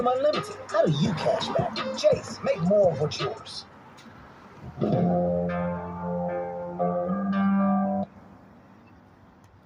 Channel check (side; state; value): both; identical; correlation 1.00